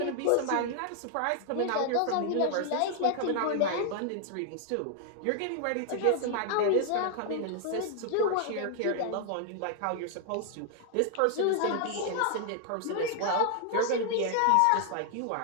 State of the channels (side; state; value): both; different; correlation 0.00